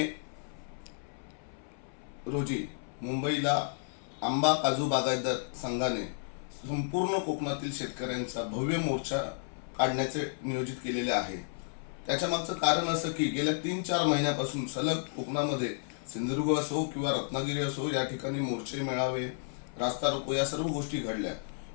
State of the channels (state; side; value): silent; right; 56 dB below the other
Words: रोजी मुंबईला आंबा काजू बागायतदार संघाने संपूर्ण कोकणातील शेतकऱ्यांचा भव्य मोर्चा काढण्याचे नियोजित केलेले आहे। त्याच्या मागचं कारण असं की गेल्या 3-4 महिन्यापासून सलग कोकणामध्ये सिंधुदुर्ग असो किंवा रत्नागिरी असो या ठिकाणी मोर्चे मेळावे रास्ता रोको या सर्व गोष्टी घडल्या,